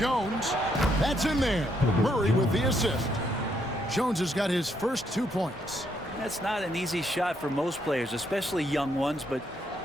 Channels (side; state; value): both; normal; correlation 0.74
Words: That's in there. Murray with the assist. Jones has got his first 2 points. That's not an easy shot for most players, especially young ones, but